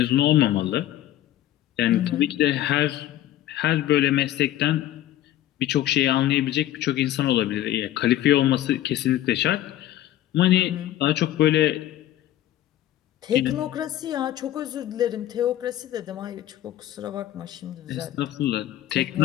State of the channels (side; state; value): right; quieter; 13.2 dB